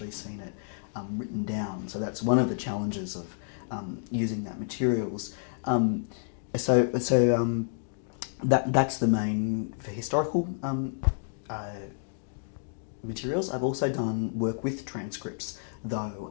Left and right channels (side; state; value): right; silent; digital silence